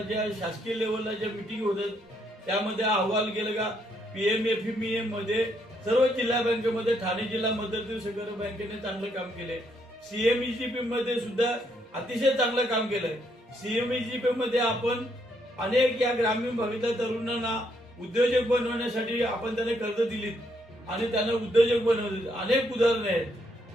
शासकीय लेवलला ज्या मिटिंग होतात त्यामध्ये अहवाल गेलं का PMFME मध्ये सर्व जिल्हा बँकेमध्ये ठाणे जिल्हा मध्यवर्ती सहकारी बँकेने चांगलं काम केलंय. CMEGP मध्ये सुद्धा अतिशय चांगलं काम केलंय. CMEGP मध्ये आपण अनेक या ग्रामीण भागातल्या तरुणांना उद्योजक बनवण्यासाठी आपण त्यांना कर्ज दिलीत आणि त्यांना उद्योजक बनवले. अनेक उदाहरण आहेत.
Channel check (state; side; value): normal; both; correlation 0.73